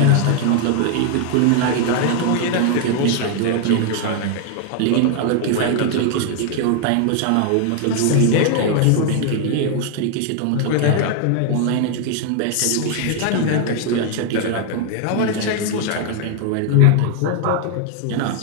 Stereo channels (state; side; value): different; both; correlation 0.00